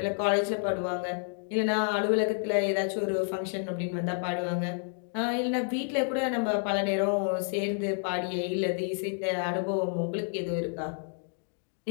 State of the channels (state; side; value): silent; right; 58 dB below the other